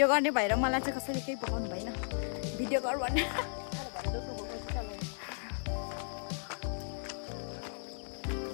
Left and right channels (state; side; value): silent; right; 54 dB below the other